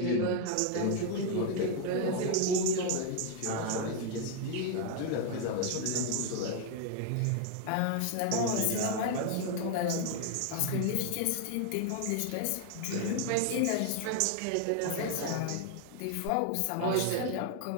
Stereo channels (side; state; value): both; different; correlation 0.00